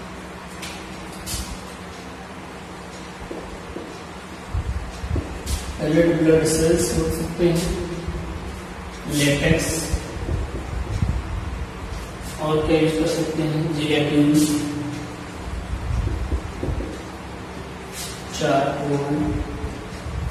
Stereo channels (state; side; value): identical; both; correlation 1.00